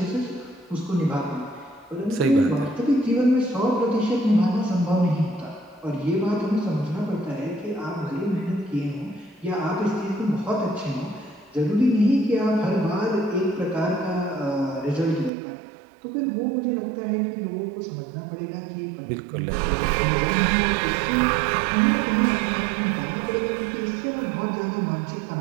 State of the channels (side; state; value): left; drops out; at 15.3 s